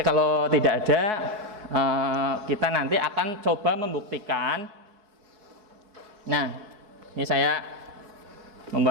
kalau tidak ada, kita nanti akan coba membuktikan. Nah, ini saya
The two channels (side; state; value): left; late; 4.7 ms